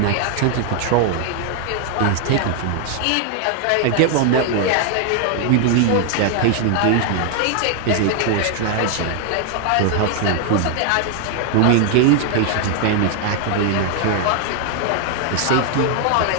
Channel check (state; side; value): different; both; correlation 0.00